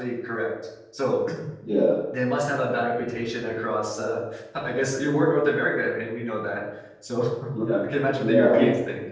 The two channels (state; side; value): identical; both; correlation 1.00